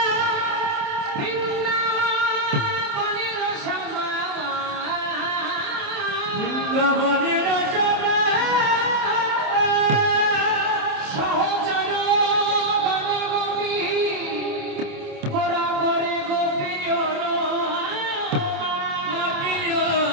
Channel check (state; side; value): late; left; 27 ms